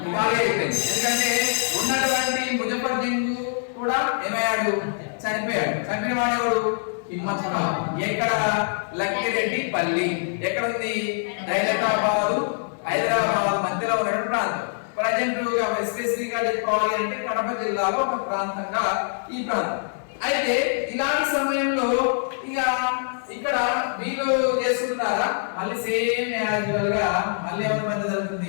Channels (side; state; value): right; silent; 58 dB below the other